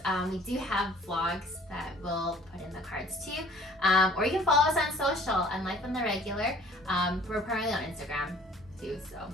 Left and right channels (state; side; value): normal; both; correlation 0.53